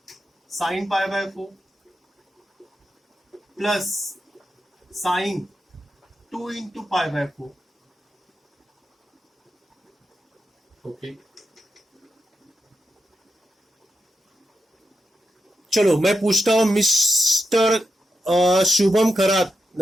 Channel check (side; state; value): both; normal; correlation 0.87